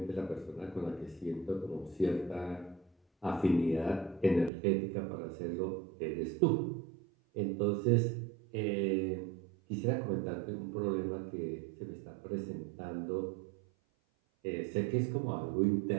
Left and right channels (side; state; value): left; drops out; at 4.5 s